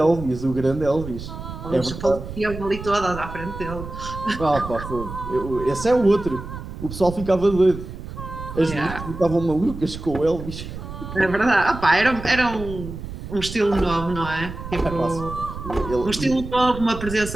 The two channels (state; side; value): noise; right; rumble, 10 dB below the sound